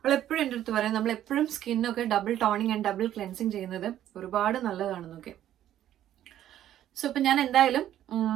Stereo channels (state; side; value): quieter; left; 11.9 dB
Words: എപ്പോഴും എൻ്റെ അടുത്ത് പറയും നമ്മളെപ്പോഴും സ്കിന്നൊക്കെ double toning and double cleansing ചെയ്യുന്നത് ഒരുപാട് നല്ലതാണെന്നൊക്കെ. സോ ഇപ്പം ഞാൻ എന്തായാലും